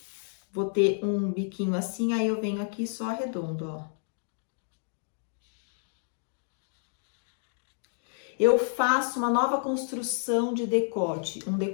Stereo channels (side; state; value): right; silent; digital silence